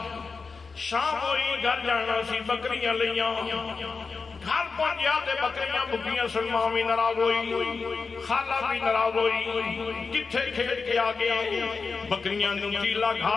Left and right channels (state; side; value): quieter; right; 4.7 dB